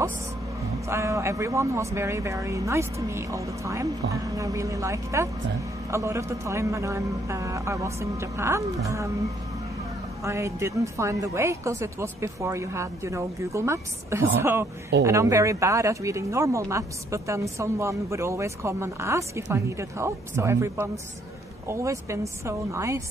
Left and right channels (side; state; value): both; normal; correlation 0.68